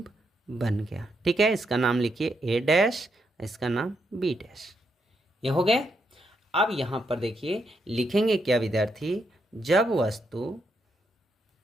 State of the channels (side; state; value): both; normal; correlation 0.79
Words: बन गया। ठीक है, इसका नाम लिखिए ए डैश, इसका नाम बी डैश। ये हो गए। अब यहाँ पर देखिए लिखेंगे क्या विद्यार्थी, जब वस्तु